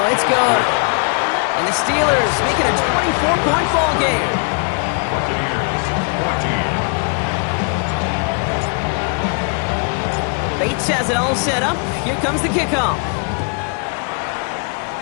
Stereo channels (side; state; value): right; quieter; 39.9 dB